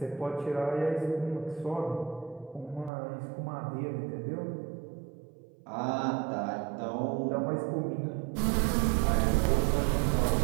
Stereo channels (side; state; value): left; drops out; at 2.9 s